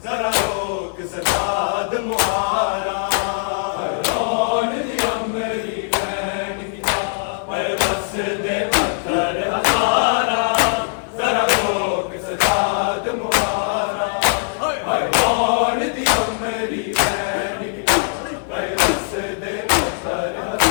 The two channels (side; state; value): right; silent; digital silence